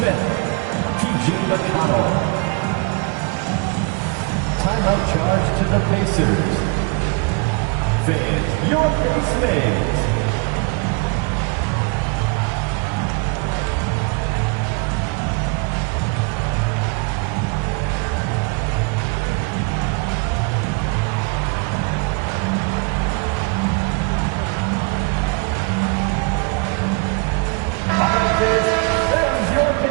TJ McConnell. Timeout charge to the Pacers. Fans, your base mates. All right, fans, there's your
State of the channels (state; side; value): quieter; left; 31.5 dB